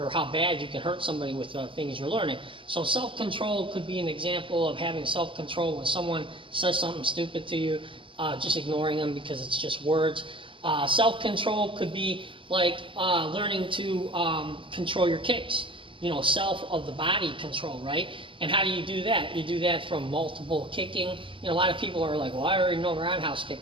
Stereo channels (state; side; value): late; left; 0.25 ms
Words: how bad you can hurt somebody with things you're learning. So self-control could be an example of having self-control when someone says something stupid to you, just ignoring them because it's just words. Self-control could be like learning to control your kicks, self of the body control, right? And how do you do that? You do that from multiple kicking. A lot of people are like, well, I already know the roundhouse kick.